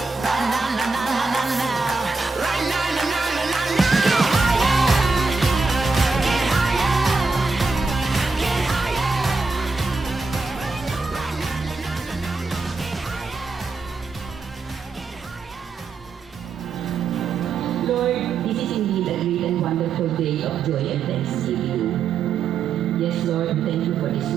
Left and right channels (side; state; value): left; quieter; 4.4 dB